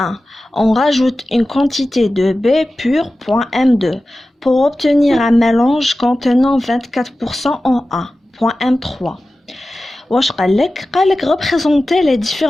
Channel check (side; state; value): both; normal; correlation 0.95